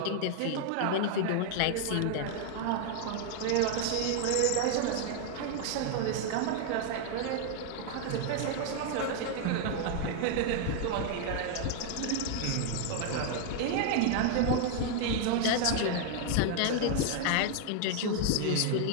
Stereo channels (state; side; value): different; both; correlation 0.00